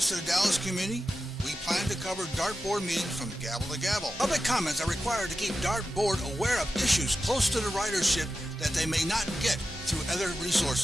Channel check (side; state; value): both; normal; correlation 0.92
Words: to the Dallas community, we plan to cover DART board meetings from gavel to gavel. Public comments are required to keep DART board aware of issues close to the ridership that they may not get through other